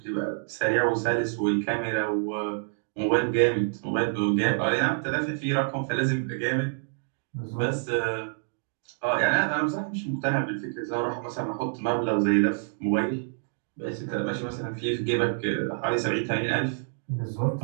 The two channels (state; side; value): silent; left; digital silence